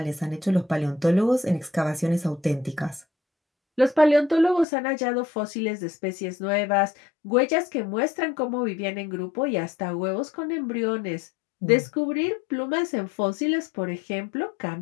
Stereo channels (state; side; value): drops out; right; at 4.7 s